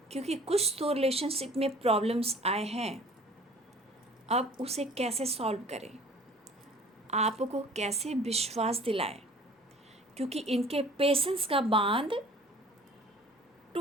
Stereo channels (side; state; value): both; normal; correlation 0.49